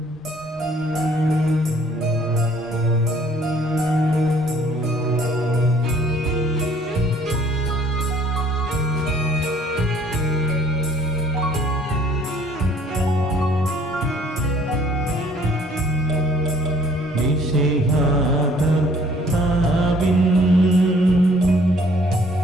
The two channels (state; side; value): normal; both; correlation 0.59